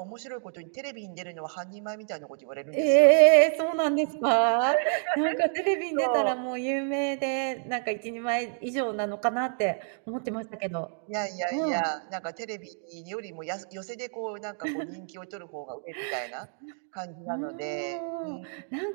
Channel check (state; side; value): silent; left; 59 dB below the other